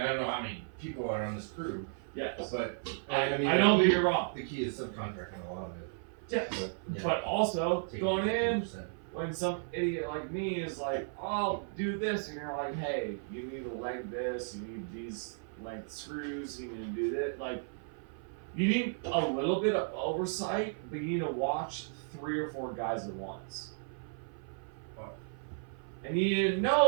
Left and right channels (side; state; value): left; silent; 55 dB below the other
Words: I don't know how many people are on this crew. Yes. But, I don't think you're wrong. The key is subcontracting a lot of it. Yes. Yeah. But also, Take going in, 50%. when some idiot like me is like, oh, I'll do this, and you're like, hey, you need to length this, you need these length screws, you need to do this, like, you need a little bit of oversight, but you need to watch 3 or 4 guys at once. And you need to